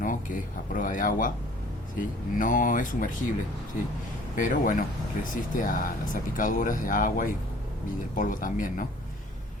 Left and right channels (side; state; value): both; normal; correlation 0.52